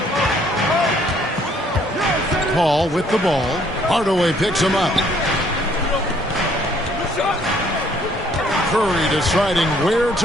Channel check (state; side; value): normal; both; correlation 0.63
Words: Paul with the ball. Hardaway picks him up. Curry deciding where